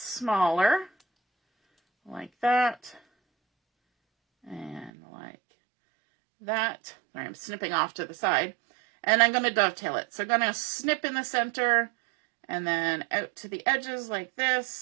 like that, and like that. I'm snipping off to the side, and I'm going to dovetail it. So I'm going to snip in the center, and then out to the edges like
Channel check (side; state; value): left; drops out; at 4.9 s